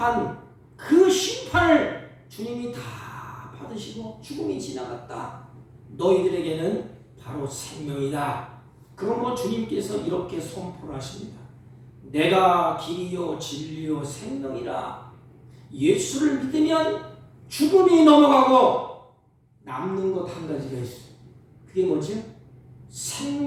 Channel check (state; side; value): identical; both; correlation 1.00